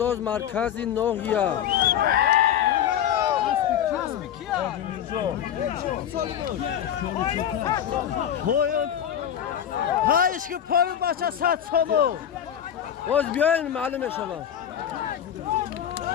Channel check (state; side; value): quieter; right; 9.7 dB